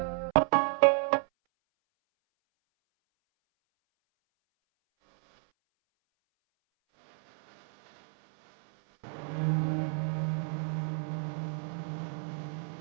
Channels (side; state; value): left; silent; 57 dB below the other